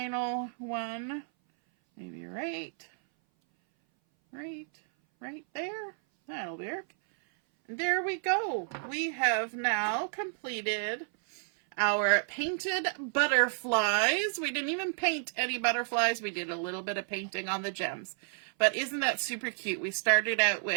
one, maybe right there. That'll work. There we go. We have now completed our painted butterflies. We didn't even paint any butterflies. We did a little bit of painting on the gems. But isn't that super cute? We started out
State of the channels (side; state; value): left; silent; 57 dB below the other